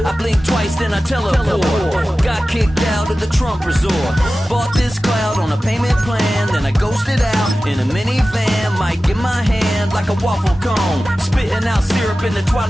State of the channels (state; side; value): normal; both; correlation 0.95